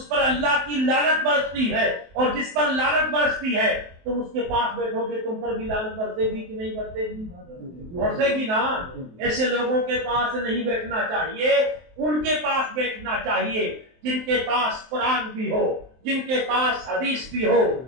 پر اللہ کی لعنت برستی ہے۔ اور جس پر لعنت برستی ہے تم اس کے پاس بیٹھو گے تم پر بھی لعنت برسے گی کہ نہیں برسے گی؟ برسے گی نا۔ ایسے لوگوں کے پاس نہیں بیٹھنا چاہیے، ان کے پاس بیٹھنا چاہیے جن کے پاس قرآن بھی ہو، جن کے پاس حدیث بھی ہو،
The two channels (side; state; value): left; late; 23 ms